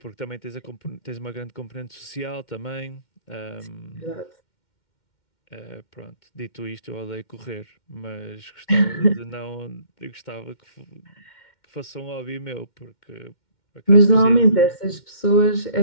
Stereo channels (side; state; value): right; late; 2.1 ms